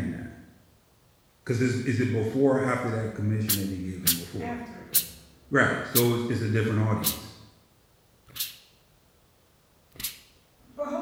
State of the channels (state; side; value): identical; both; correlation 1.00